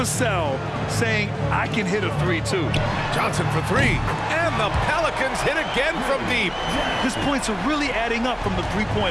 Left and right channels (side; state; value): both; identical; correlation 1.00